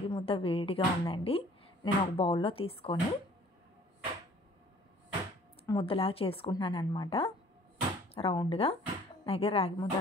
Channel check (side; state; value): both; normal; correlation 0.53